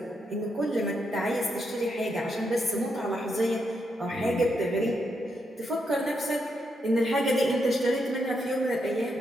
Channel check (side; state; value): both; normal; correlation 0.81